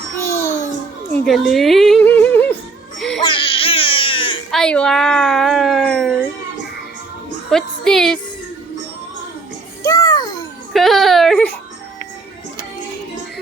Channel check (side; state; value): left; quieter; 4.0 dB